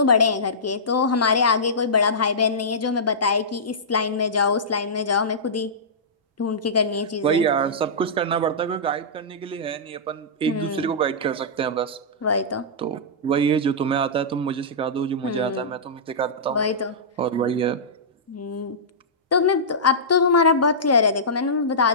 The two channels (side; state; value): both; normal; correlation -0.17